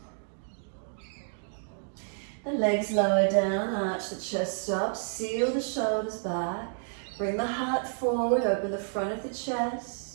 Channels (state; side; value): silent; left; digital silence